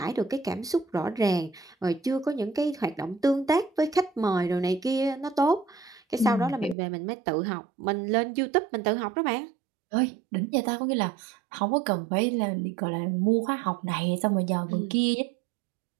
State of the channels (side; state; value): left; drops out; at 6.8 s